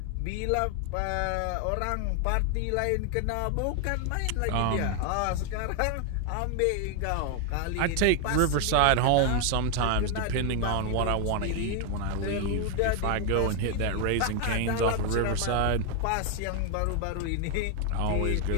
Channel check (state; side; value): different; both; correlation 0.00